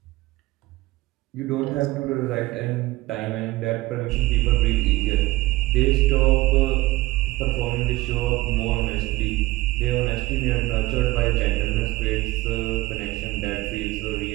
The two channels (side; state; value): left; quieter; 19.2 dB